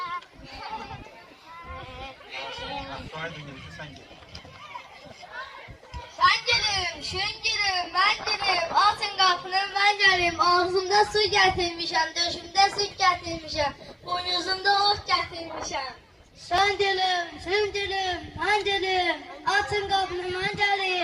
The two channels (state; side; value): identical; both; correlation 1.00